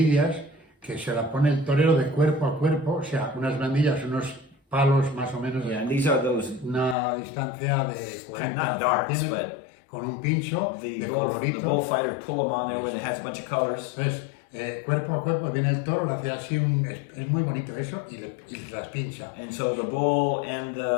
que se las pone el torero de cuerpo a cuerpo, o sea, unas bandillas, unos palos más o menos, Yeah, and these are those, una distancia de 40 not darts, centímetros, con un pincho the de colorito. bullfighters pull them on there when it has a bunch of colors. Entonces, cuerpo a cuerpo viene el toro, le hace así es muy bonito eso, y las pincha. And so the bull and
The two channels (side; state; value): right; drops out; at 7.0 s